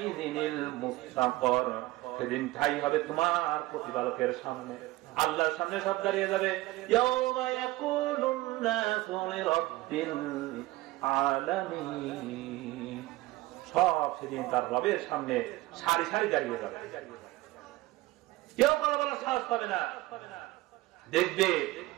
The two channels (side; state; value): left; quieter; 18.7 dB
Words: মুস্তাকর, সেদিন ঠাই হবে তোমার প্রতিপালকের সামনে, আল্লাহর সামনে সব দাঁড়িয়ে যাবে। ইয়াউমা ইয়াকুলুন নাসু লিরাব্বিল আলামিন, সব সেদিন তার রবের সামনে সারি সারি দাঁড়িয়ে যাবে, কেউ কথা বলার সাহস পাবে না। দেখবে